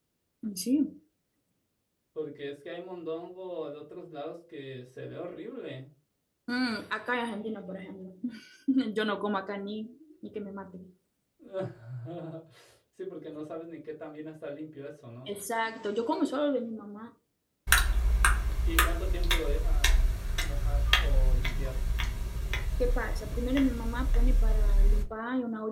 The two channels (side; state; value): both; identical; correlation 1.00